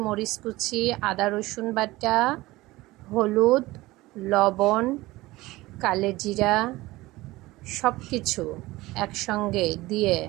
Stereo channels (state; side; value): quieter; left; 19.2 dB